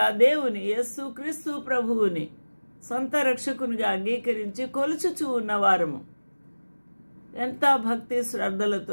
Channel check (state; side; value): inverted; both; correlation -1.00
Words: దేవుని యేసుక్రీస్తు ప్రభువుని సొంత రక్షకునిగా అంగీకరించి కొలుచుచూ ఉన్నవారము ఎంత భక్తి